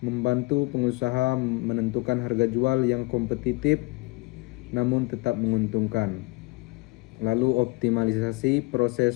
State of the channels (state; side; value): quieter; right; 25.0 dB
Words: membantu pengusaha menentukan harga jual yang kompetitif namun tetap menguntungkan. Lalu optimalisasi